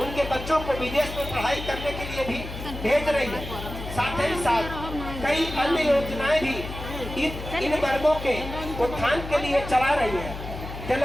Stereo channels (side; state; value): left; noise; hum, 9 dB below the sound